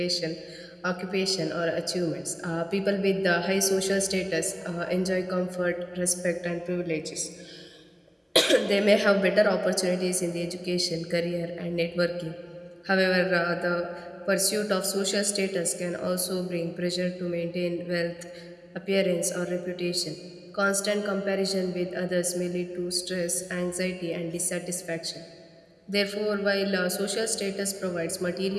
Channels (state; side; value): identical; both; correlation 1.00